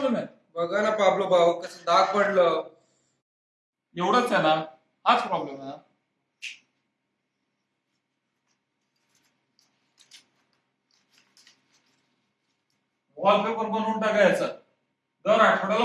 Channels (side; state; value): both; identical; correlation 1.00